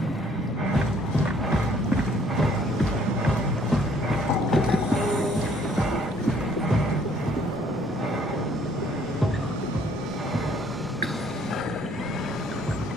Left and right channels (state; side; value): normal; both; correlation 0.62